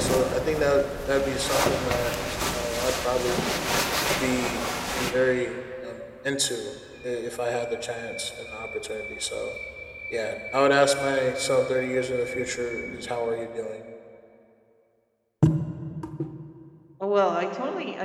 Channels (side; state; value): both; identical; correlation 1.00